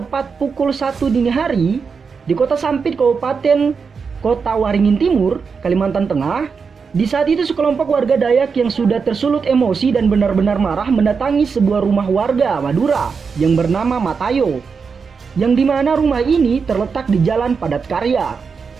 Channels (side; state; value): left; quieter; 5.5 dB